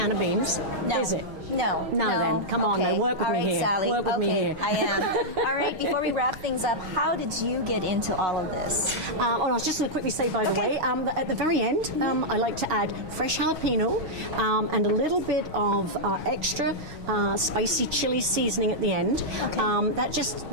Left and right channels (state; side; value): late; left; 6.4 ms